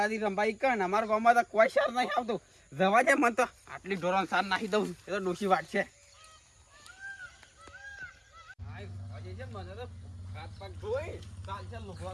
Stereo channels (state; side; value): identical; both; correlation 1.00